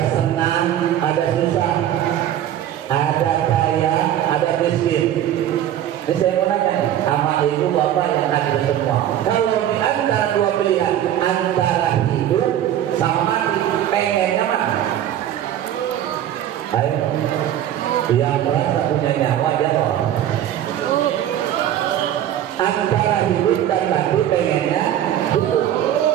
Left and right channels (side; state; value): left; quieter; 11.3 dB